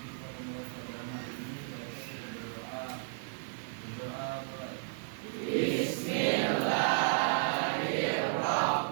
kita memulai pelajaran hari ini, kita berdoa. Berdoa mulai.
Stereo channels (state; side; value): silent; left; digital silence